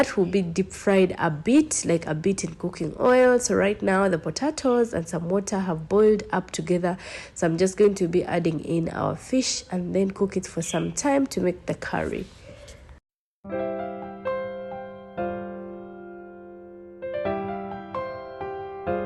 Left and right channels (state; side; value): identical; both; correlation 1.00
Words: will be deep fried a bit, like a bit in cooking oil. So right now the potatoes and some water have boiled up together, so I'm just going to be adding in our fish and then cook it for some time to make the curry.